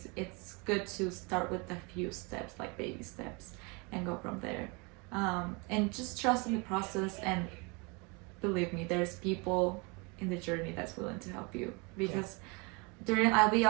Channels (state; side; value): quieter; left; 29.8 dB